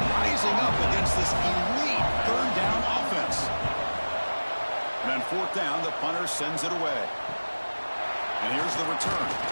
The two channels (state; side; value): inverted; both; correlation -1.00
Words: rising up against this elite third down offense. And on fourth down, the punter sends it away. And here's the return.